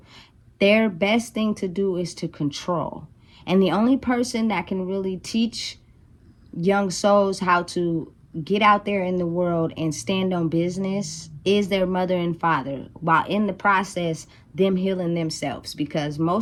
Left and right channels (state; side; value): identical; both; correlation 1.00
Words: their best thing to do is to control. And the only person that can really teach young souls how to get out there in the world and stand on business is their mother and father, while in the process them healing themselves. Because